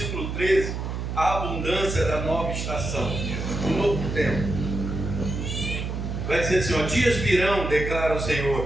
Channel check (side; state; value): right; noise; hum, 4 dB below the sound